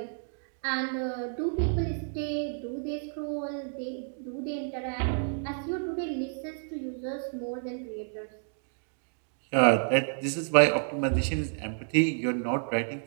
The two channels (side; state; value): left; silent; digital silence